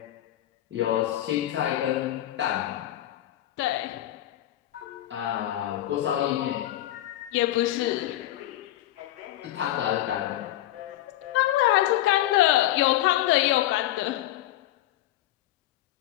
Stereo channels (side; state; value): right; quieter; 14.2 dB